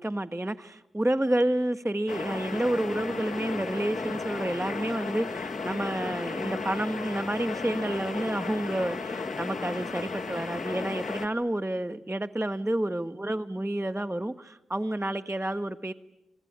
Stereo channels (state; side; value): normal; both; correlation 0.92